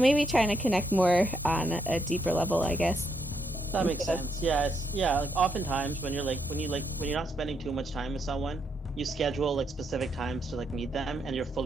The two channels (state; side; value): normal; both; correlation 0.76